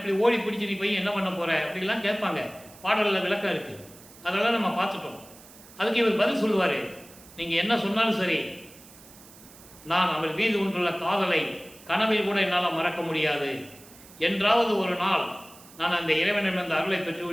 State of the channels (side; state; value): right; noise; hiss, 21 dB below the sound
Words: ஓடி பிடிச்சி நீ போய் என்ன பண்ண போகிற அப்படிலாம் கேட்பாங்க. பாடலில் விளக்கம் இருக்குது. அதெல்லாம் நம்ம பார்த்துட்டோம். அதுக்கு இவர் பதில் சொல்லுவார், நீங்கள் என்ன சொன்னாலும் சரி, நான் அவர் மீது கொண்டுள்ள காதலை கனவில் கூட என்னால் மறக்க முடியாது, என்றாவது ஒரு நாள் நான் அந்த இறைவனிடமிருந்து அருளை பெற்று